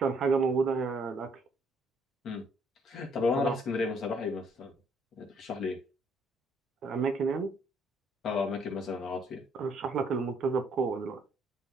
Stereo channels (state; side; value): normal; both; correlation 0.67